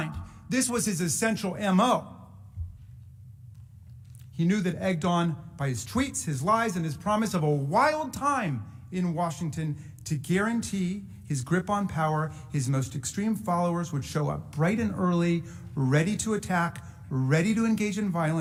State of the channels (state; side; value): identical; both; correlation 1.00